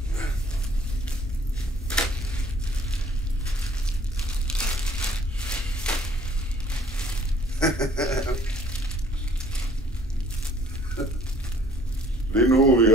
Lige nu vi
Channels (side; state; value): both; normal; correlation 0.57